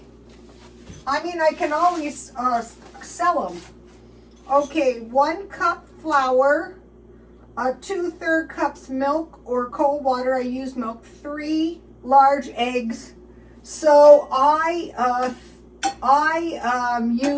I mean, I can always sell them. Okay, 1 cup flour. 2/3 cups milk or cold water. I use milk. 3 large eggs. So I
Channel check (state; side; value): identical; both; correlation 1.00